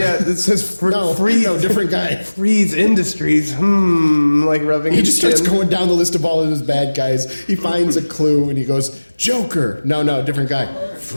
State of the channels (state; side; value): inverted; both; correlation -1.00